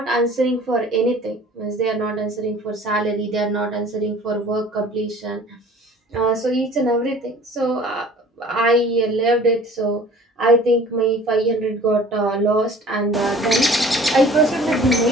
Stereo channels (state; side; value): normal; both; correlation 0.48